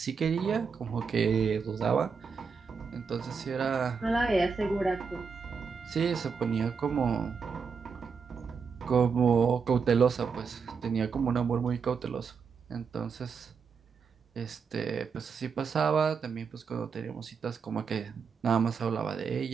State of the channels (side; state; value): left; quieter; 5.7 dB